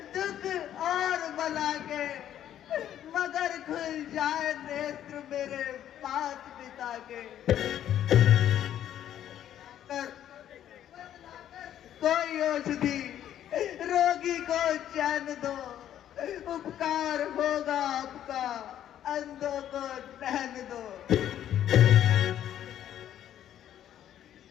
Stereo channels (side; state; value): right; quieter; 11.0 dB